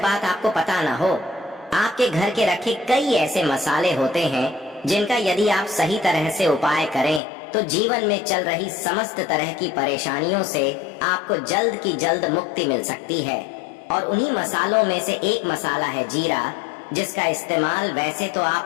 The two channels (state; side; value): drops out; right; at 7.2 s